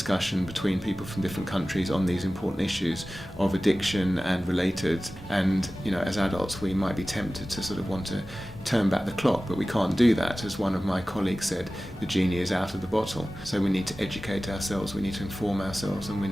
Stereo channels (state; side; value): normal; both; correlation 0.96